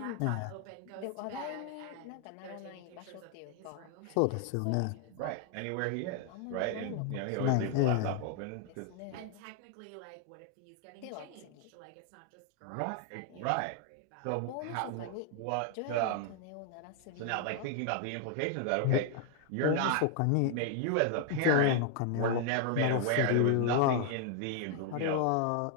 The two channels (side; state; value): both; different; correlation 0.00